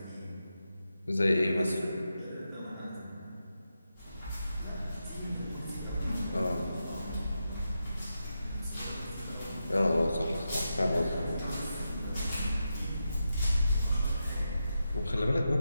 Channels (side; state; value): both; inverted; correlation -0.88